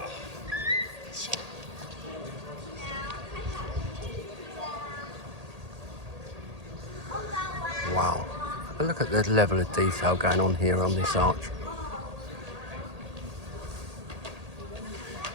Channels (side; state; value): left; late; 1.8 ms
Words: Wow. But look at the level of detail going on here on this arch.